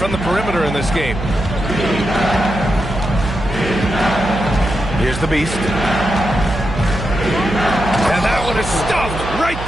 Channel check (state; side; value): noise; right; hum, 8 dB below the sound